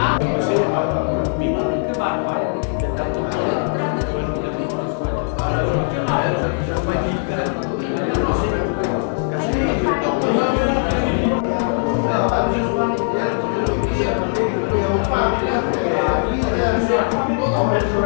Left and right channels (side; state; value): right; silent; digital silence